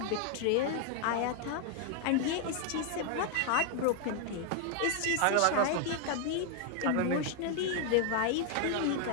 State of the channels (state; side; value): different; both; correlation 0.00